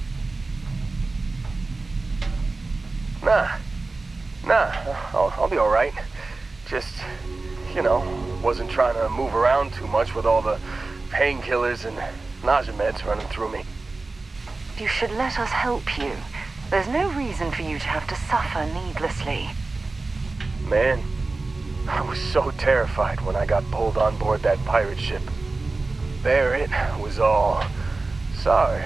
Nah, I'll be alright. Just, wasn't trying to move around too much with all the painkillers and nausea meds running through me. You should let us help you. There's no reason for you to have to suffer needlessly. Man, I was so terrified when I got pulled on board that pirate ship. Barrett was all, "Sorry,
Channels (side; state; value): left; quieter; 3.5 dB